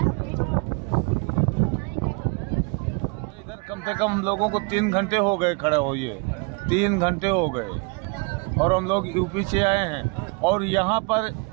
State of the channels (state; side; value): quieter; left; 31.0 dB